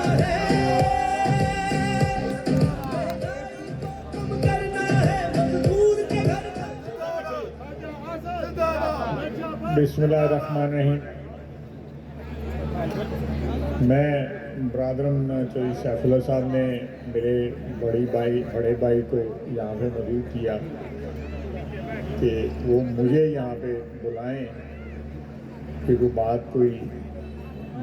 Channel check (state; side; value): identical; both; correlation 1.00